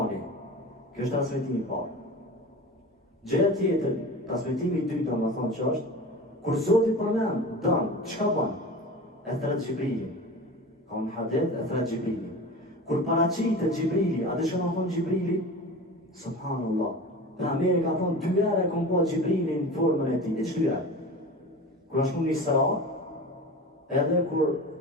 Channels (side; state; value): both; normal; correlation 0.33